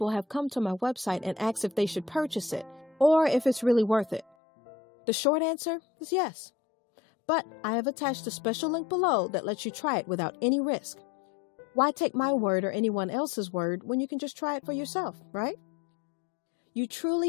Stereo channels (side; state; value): right; drops out; at 4.2 s